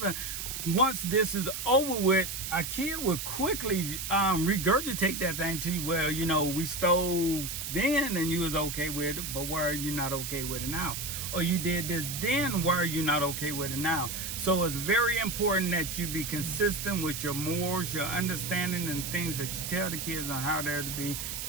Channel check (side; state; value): right; noise; hiss, 5 dB below the sound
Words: Once this is over with, a kid would quickly regurgitate that thing to you. Well, you know, we stole then and you was okay with it, but why are you not okay with it now? Or you did this then, why are you not okay with it now? So it's very important that you be consistent with your morals, your understanding, and things that you tell the kids on how they're to be.